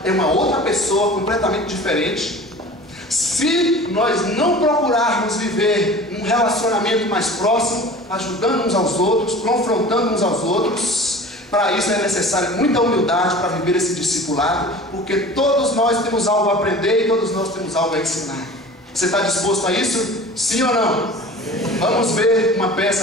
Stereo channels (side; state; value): both; normal; correlation 0.40